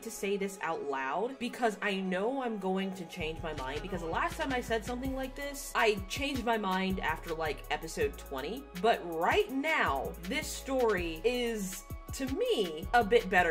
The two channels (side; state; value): both; identical; correlation 1.00